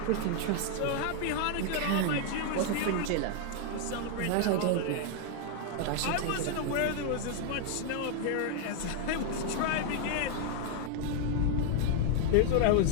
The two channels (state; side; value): different; both; correlation 0.00